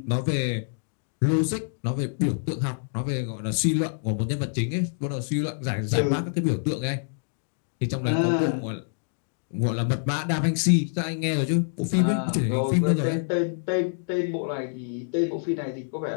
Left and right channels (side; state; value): right; silent; digital silence